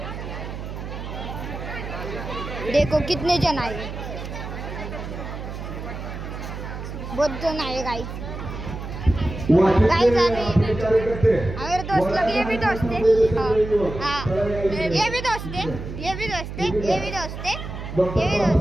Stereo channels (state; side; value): noise; right; hum, 8 dB below the sound